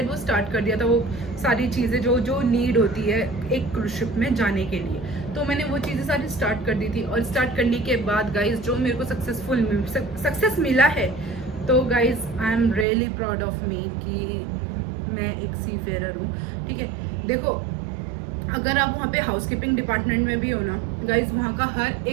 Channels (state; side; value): drops out; left; at 12.9 s